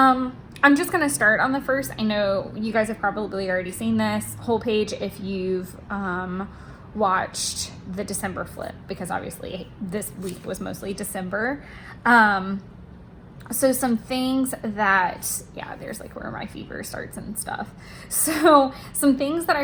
just gonna start on the 1st. I know you guys have probably already seen this whole page if you've watched the December flip, because obviously this week was mostly December. So some things that, yeah, there's like where my fever starts and stuff. So some things that I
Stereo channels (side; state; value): both; identical; correlation 1.00